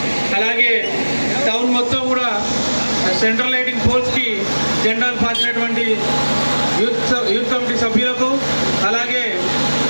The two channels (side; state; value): both; inverted; correlation -1.00